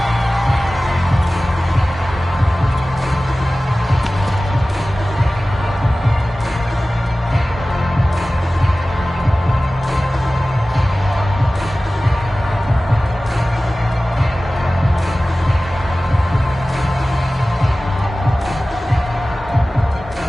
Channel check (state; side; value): normal; both; correlation 0.97